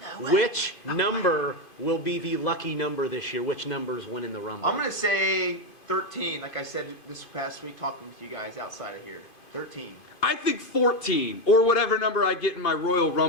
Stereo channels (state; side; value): late; right; 2.5 ms